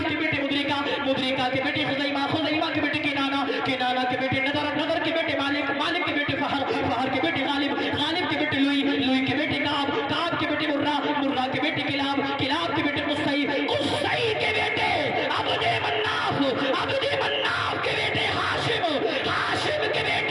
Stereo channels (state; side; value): identical; both; correlation 1.00